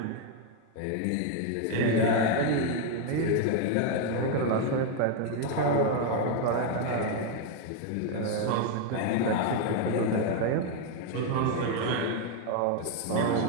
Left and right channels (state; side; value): different; both; correlation 0.01